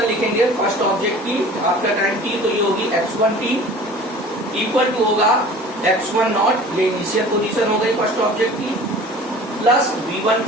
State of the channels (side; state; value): both; normal; correlation 0.43